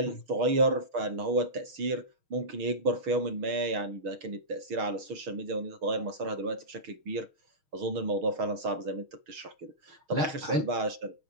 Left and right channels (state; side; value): late; left; 6.5 ms